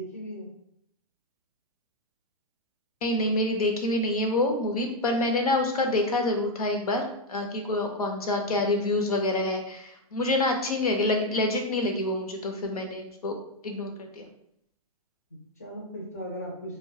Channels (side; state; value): both; normal; correlation 0.05